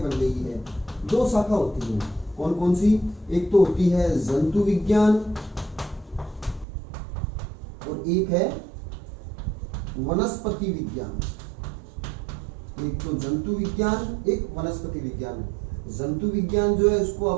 बन गई है। दो शाखा होती है, कौन कौन सी, एक तो होती है जंतु विज्ञान और एक है वनस्पति विज्ञान। एक तो जंतु विज्ञान, एक वनस्पति विज्ञान। जंतु विज्ञान जो है उसको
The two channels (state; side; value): drops out; left; at 6.7 s